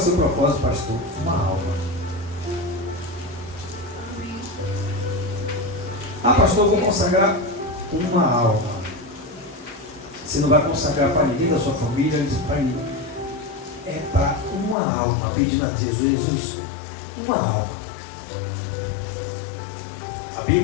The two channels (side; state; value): right; drops out; at 14.8 s